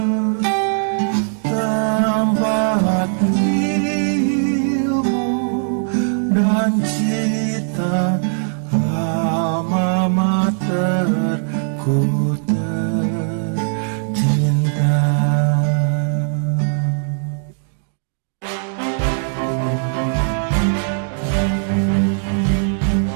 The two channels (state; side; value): silent; left; digital silence